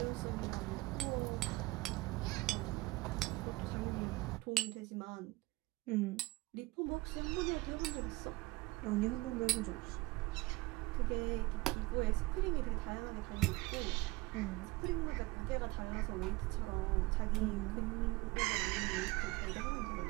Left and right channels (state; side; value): quieter; left; 21.3 dB